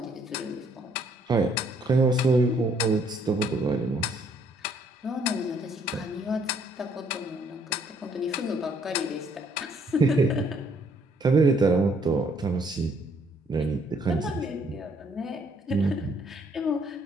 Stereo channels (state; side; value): normal; both; correlation 0.66